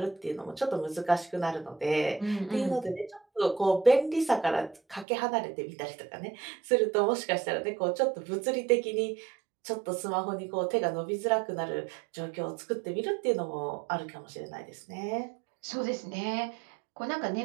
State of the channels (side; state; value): left; drops out; at 5.1 s